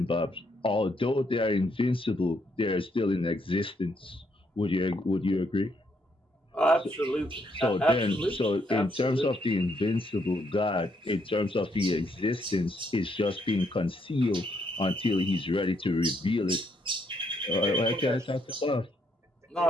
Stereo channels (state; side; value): normal; both; correlation 0.74